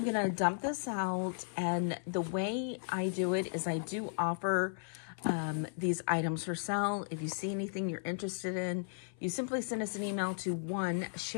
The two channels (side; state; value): right; silent; 54 dB below the other